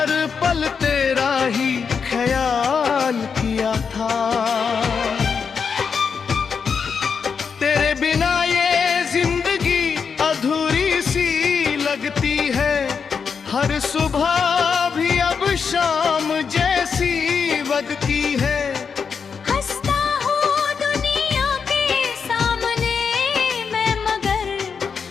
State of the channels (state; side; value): quieter; right; 6.0 dB